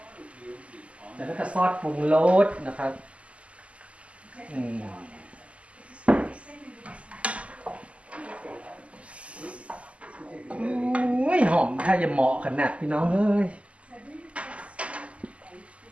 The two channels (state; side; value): late; left; 0.061 ms